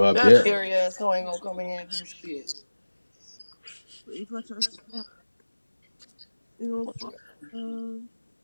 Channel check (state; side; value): inverted; both; correlation -1.00